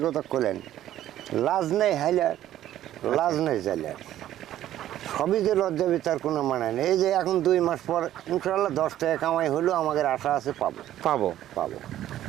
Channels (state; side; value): quieter; left; 12.6 dB